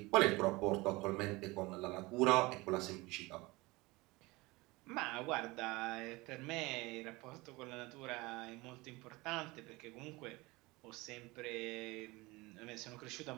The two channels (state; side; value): quieter; left; 22.5 dB